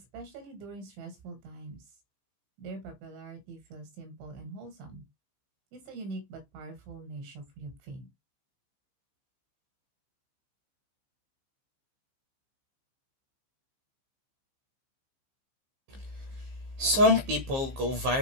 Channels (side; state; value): left; late; 15 ms